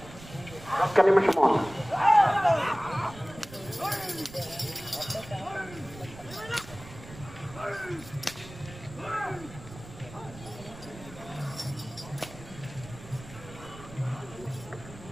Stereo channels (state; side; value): noise; right; rumble, 16 dB below the sound